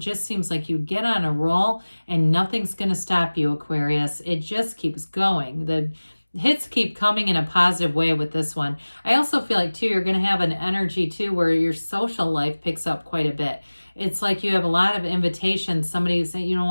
seems like you get on a roll and nothing's going to stop you, Aquarius. It just keeps going. The hits keep coming in a positive way with this one. I also feel like too, you're going to have an energy too where your social life picks up quite a bit. It's like you have a lot of invitations. Somebody saying, you don't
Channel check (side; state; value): both; inverted; correlation -1.00